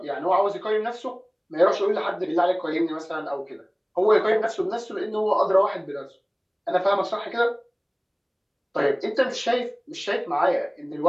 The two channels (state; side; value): identical; both; correlation 1.00